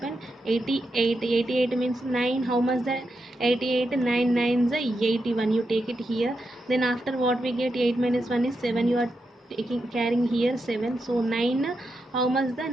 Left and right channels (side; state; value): both; normal; correlation 0.86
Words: 88. 88 means 9 how much that, 88 9 9s are 81, you take it here. Then after what we get, 8 minus 1 is 7, you are taking carrying here 7. So 9 how much the